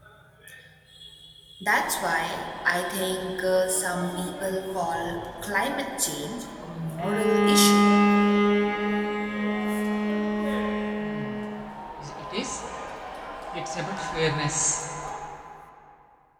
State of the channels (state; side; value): identical; both; correlation 1.00